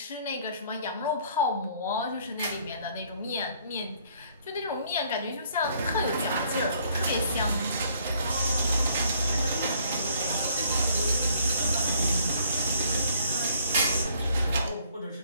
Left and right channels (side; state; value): both; inverted; correlation -0.63